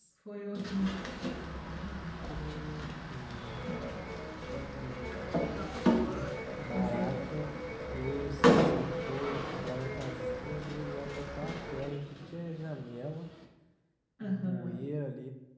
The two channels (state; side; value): identical; both; correlation 1.00